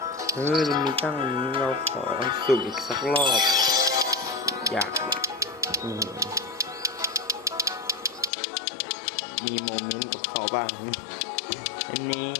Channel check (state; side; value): drops out; right; at 8.3 s